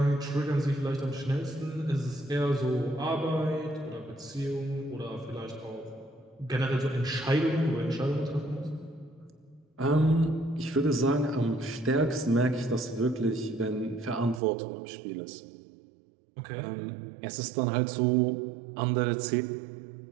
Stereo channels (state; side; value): drops out; left; at 14.4 s